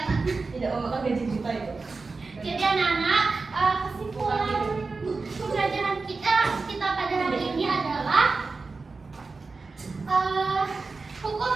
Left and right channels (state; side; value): quieter; left; 4.1 dB